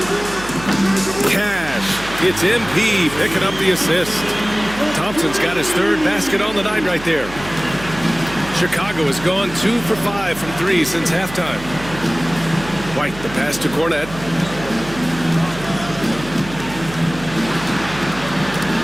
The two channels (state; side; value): noise; right; hum, 14 dB below the sound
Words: Cash. It's MP picking up the assist. Thompson's got his 3rd basket on the night right there. Chicago has gone 2 for 5 from 3 since halftime. White, the pass to Cornette.